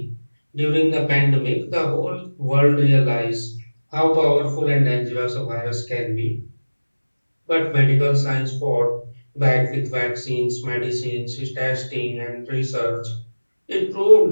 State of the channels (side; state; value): both; inverted; correlation -1.00